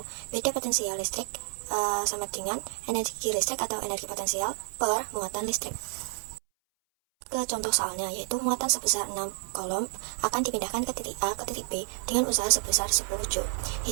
beda potensial listrik sama dengan energi listrik atau energi potensial per muatan listrik. Ke contoh soalnya, yaitu muatan sebesar 6 kolom akan dipindahkan ke titik A ke titik B dengan usaha sebesar 10 Joule.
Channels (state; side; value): silent; left; 58 dB below the other